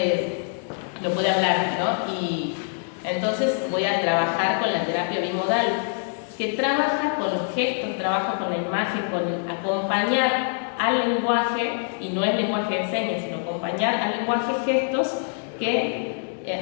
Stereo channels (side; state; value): right; silent; 62 dB below the other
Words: hablar, ¿no? Y entonces voy a trabajar con la terapia bimodal, que trabaja con los gestos, trabaja con la imagen, con acompañar al lenguaje, y no es lenguaje de señas, sino acompañar al lenguaje gestos que